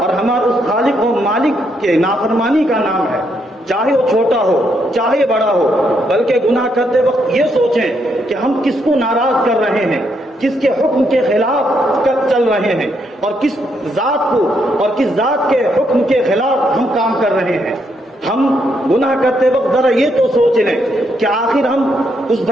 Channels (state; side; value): normal; both; correlation 0.76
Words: اور ہمارے اس خالق و مالک کے نافرمانی کا نام ہے، چاہے وہ چھوٹا ہو چاہے بڑا ہو۔ بلکہ گناہ کرتے وقت یہ سوچیں کہ ہم کس کو ناراض کر رہے ہیں، کس کے حکم کے خلاف چل رہے ہیں، اور کس ذات کو اور کس ذات کے حکم کے خلاف ہم کام کر رہے ہیں۔ ہم گناہ کرتے وقت ذرا یہ تو سوچ لیں کہ آخر ہم